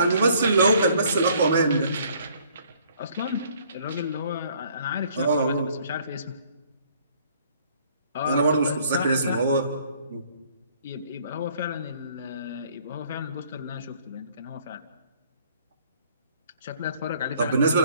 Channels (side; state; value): both; inverted; correlation -0.60